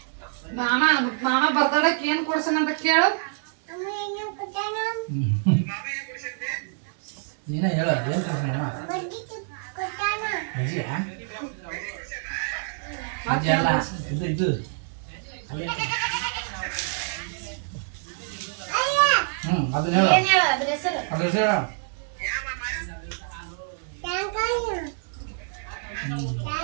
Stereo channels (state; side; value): silent; left; digital silence